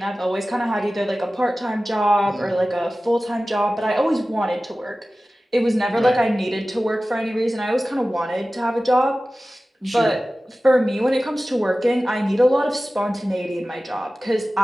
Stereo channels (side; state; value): both; normal; correlation 0.96